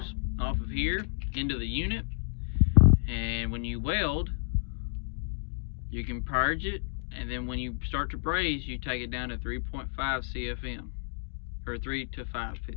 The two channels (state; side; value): silent; right; digital silence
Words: off of here into the unit, and when you weld, you can purge it, and then when you start to braze, you take it down to 3.5 CFM, or 3 to 5